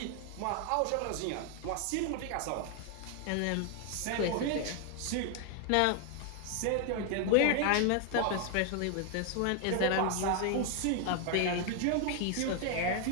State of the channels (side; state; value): both; different; correlation 0.00